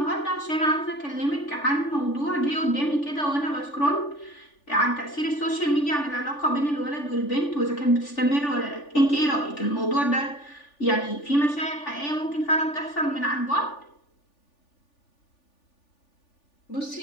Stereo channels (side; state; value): right; late; 3.4 ms